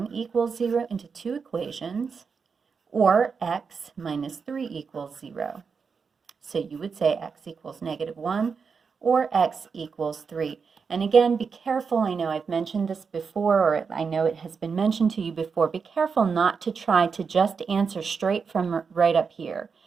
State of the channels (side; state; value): left; quieter; 5.6 dB